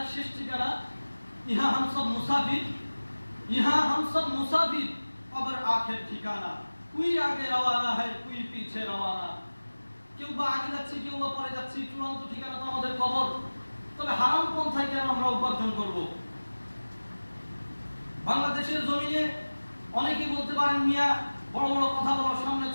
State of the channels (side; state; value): both; inverted; correlation -1.00